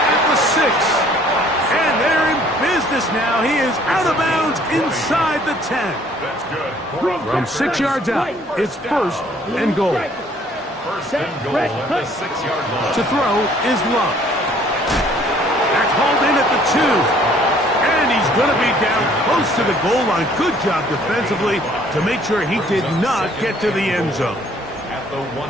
at the 6. And they're in business now. He is out of bounds inside the 10. That's good. From 6 yards out, it's first and goal. First and goal at the 6-yard line. To throw is Love. That's hauled in at the 2. And he's going to be down close to the goal line. Good job defensively to make sure he did not get to the end zone.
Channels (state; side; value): normal; both; correlation 0.59